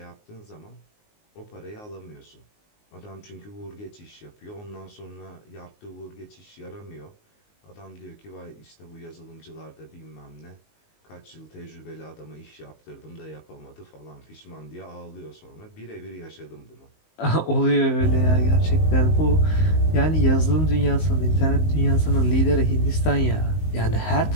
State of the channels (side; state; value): right; late; 19 ms